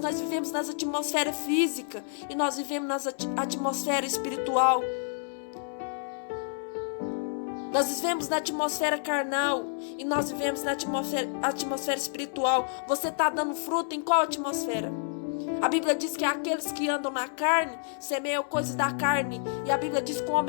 vivemos na atmosfera física e nós vivemos na atmosfera espiritual. Nós vivemos na atmosfera carnal e nós vivemos na atmosfera espiritual. Você está dando fruto em qual atmosfera? A Bíblia diz que aqueles que andam na carne semeiam coisas da carne. E a Bíblia diz que o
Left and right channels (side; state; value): right; silent; 59 dB below the other